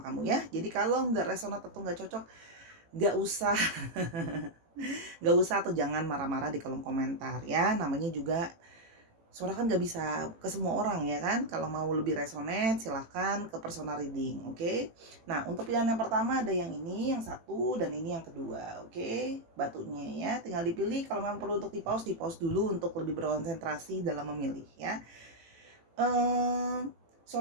ya. Jadi kalau nggak resonat atau nggak cocok, nggak usah nggak usah atau jangan marah-marah di kolom komentar ya. Namanya juga Sora kan nggak bisa ke semua orang ya kan. Kalau mau lebih resonate silahkan ke personal reading, oke? Nah untuk pilihan yang pertama ada yang ini, yang satu, dan ini yang kedua, oke? Batunya ya, tinggal dipilih. Kalau memang perlu untuk di pause dulu untuk lebih berkonsentrasi dalam memilih ya.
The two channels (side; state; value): left; late; 18 ms